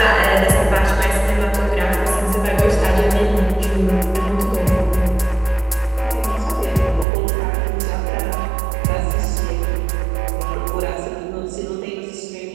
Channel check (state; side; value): drops out; left; at 7.1 s